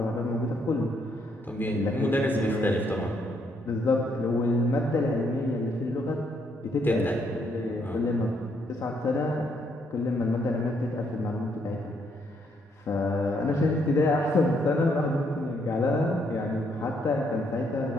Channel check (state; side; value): normal; both; correlation 0.73